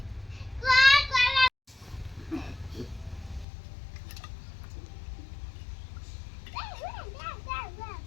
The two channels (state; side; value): drops out; right; at 3.5 s